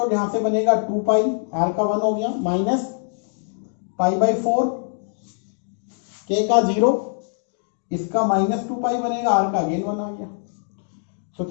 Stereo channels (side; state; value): right; silent; digital silence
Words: यहां से बनेगा 2 पाई, आर का 1 हो गया, माइनस पाई बाई 4, के का 0, इसका माइनस 2 पाई बनेगा, आर का अगेन 1 आ गया। तो